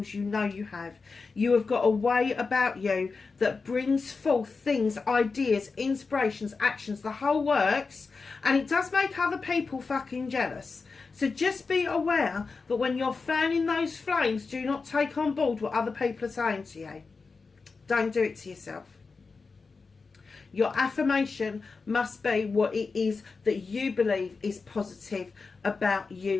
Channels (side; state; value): right; quieter; 4.5 dB